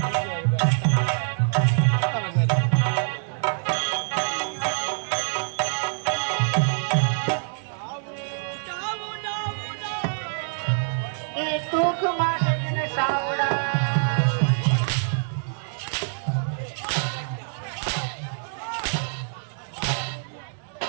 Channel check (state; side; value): silent; left; digital silence